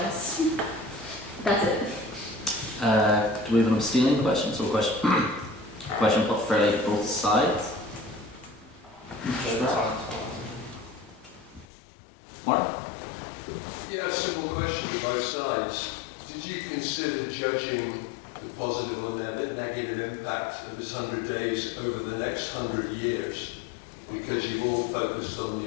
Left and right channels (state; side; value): drops out; right; at 11.7 s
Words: that's it. Do we have an abstaining question? So question put fairly to both sides. Martin? Yeah, a simple question to both sides. Did you consider judging the positive or negative impact of this 100 days over the next 100 years? Because you've all focused on